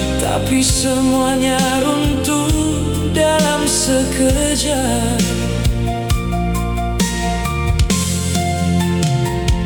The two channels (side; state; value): both; identical; correlation 1.00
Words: tapi semuanya runtuh dalam sekejap.